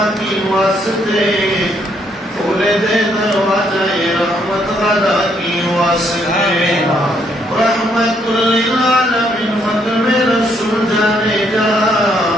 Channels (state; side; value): normal; both; correlation 0.71